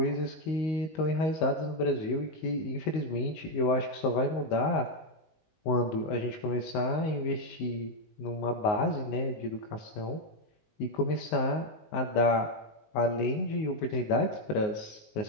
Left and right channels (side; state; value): right; late; 19 ms